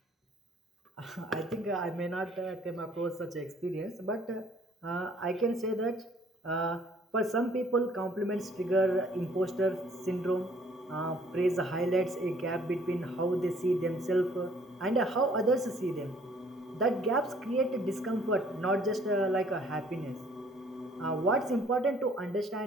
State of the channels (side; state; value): both; normal; correlation 0.59